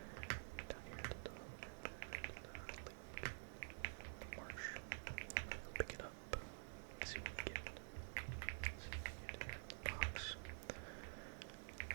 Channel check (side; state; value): left; silent; digital silence